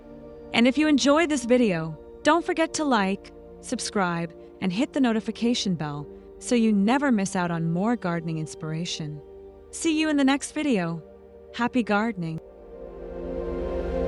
And if you enjoyed this video, don't forget to like, subscribe, and hit the notification bell so you never miss out on more gardening inspiration. See you in the next video. Happy gardening!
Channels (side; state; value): both; identical; correlation 1.00